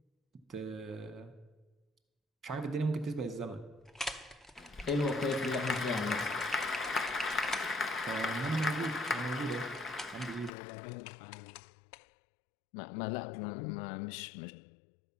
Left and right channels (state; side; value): drops out; right; at 10.5 s